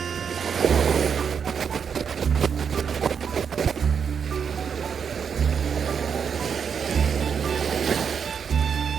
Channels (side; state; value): left; quieter; 6.9 dB